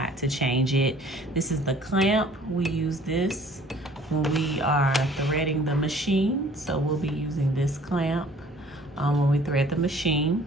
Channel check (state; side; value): normal; both; correlation 0.53